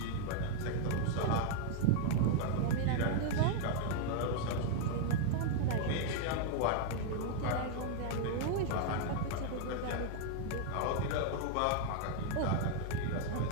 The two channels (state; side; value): different; both; correlation -0.01